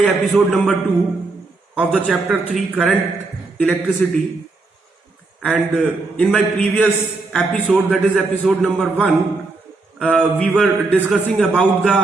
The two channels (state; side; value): quieter; left; 3.5 dB